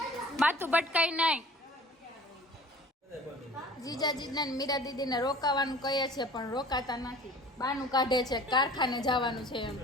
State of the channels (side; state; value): both; normal; correlation 0.45